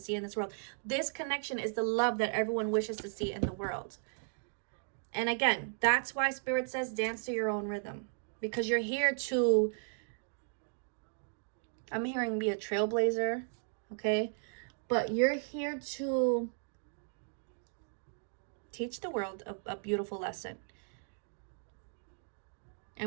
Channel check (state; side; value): silent; left; digital silence